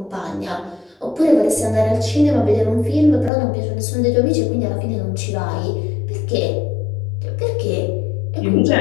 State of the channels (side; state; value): right; drops out; at 3.3 s